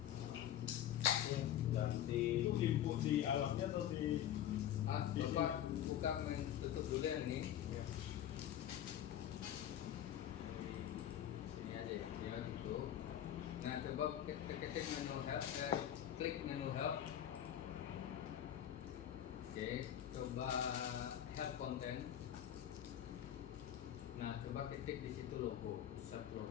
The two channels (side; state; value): right; quieter; 10.9 dB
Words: Ganti. Itu input di alatnya atau di Ah, bapak buka tutup dulu ya nih. Sini aja ya, ya gitu. Nah coba ketik menu help, klik menu help. Oke, coba help content. Nah coba ketik di situ logo, search